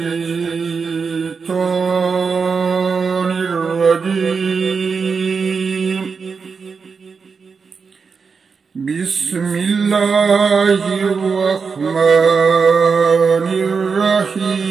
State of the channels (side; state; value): left; quieter; 5.3 dB